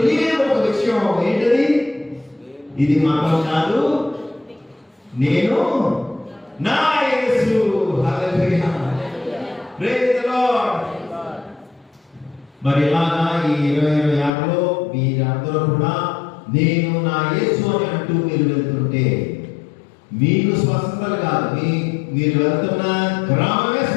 ఒక విషయం ఏంటది, ఇది మతం కాదు, నేను నా యేసు. హల్లెలూయా, ప్రైజ్ ది లార్డ్. మరి ఇలాగా ఈ 2026లో మీరందరూ కూడా నేను నా యేసు అని అంటూ మీరు వెళ్తుంటే మీకు స్వస్థతలు కాదు, మీరు వెళ్తున్న గ్రామమే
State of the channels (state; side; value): drops out; right; at 14.3 s